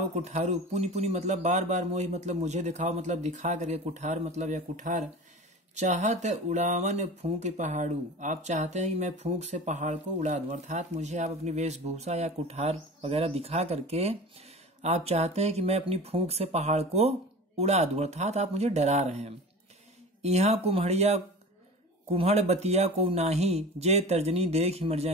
कुठारू। पुनि पुनि मतलब बार बार, मोहि मतलब मुझे, दिखाओ मतलब दिखा करके, कुठार मतलब या कुठार। चाहत उड़ावन फूंक पहाड़ू, आप चाहते हैं कि मैं फूंक से पहाड़ को उड़ा दूं, अर्थात मुझे आप अपनी वेशभूषा या कुठार वगैरह दिखा करके आप चाहते हैं कि मैं अपनी फूंक से पहाड़ को उड़ा दूं, अर्थात आप मुझे डरा रहे हैं। यहाँ कुम्हड़ बतिया को नाही, जे तर्जनी देख मर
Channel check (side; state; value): both; normal; correlation 0.34